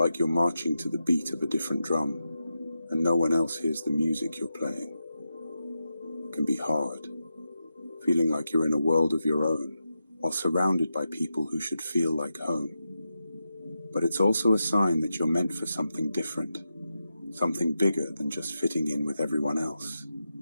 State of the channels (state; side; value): inverted; both; correlation -0.89